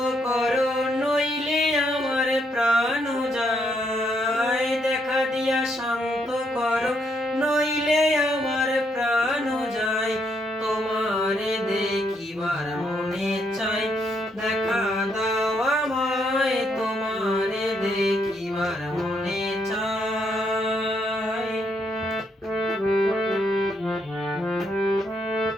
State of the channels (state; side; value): normal; both; correlation 0.75